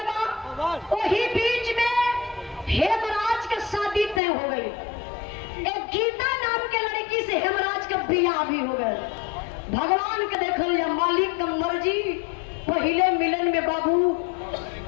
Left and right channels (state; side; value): drops out; right; at 4.2 s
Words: बा। वही बीच में हेमराज का शादी तय हो गई। एक गीता नाम के लड़की से हेमराज का बियाह भी हो गया। भगवान के देखल या मालिक का मर्जी, पहले मिलन में बाबू